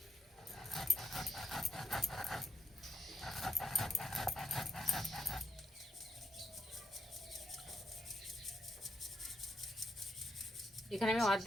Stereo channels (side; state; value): both; normal; correlation 0.77